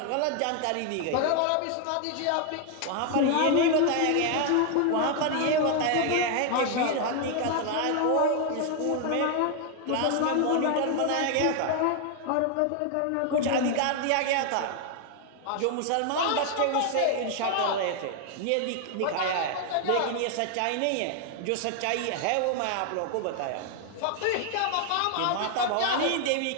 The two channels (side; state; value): both; different; correlation 0.00